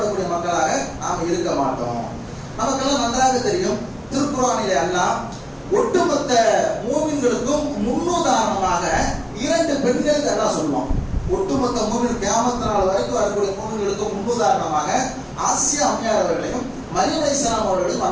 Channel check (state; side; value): identical; both; correlation 1.00